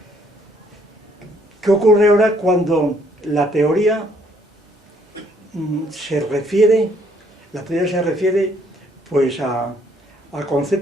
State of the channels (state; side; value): normal; both; correlation 0.66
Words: ¿Qué ocurre ahora cuando la teoría se refiere pues a